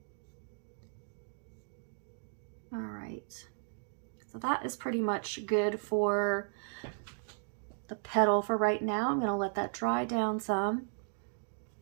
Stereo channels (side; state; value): left; silent; digital silence